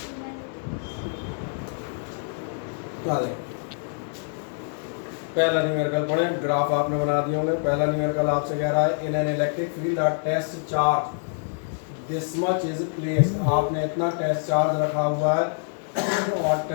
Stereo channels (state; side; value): silent; right; 61 dB below the other